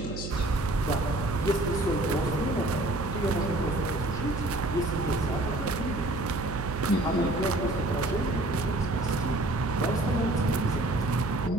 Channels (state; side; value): noise; right; hum, 7 dB below the sound